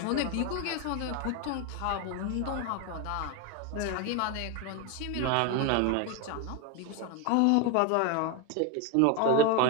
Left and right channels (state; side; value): different; both; correlation 0.02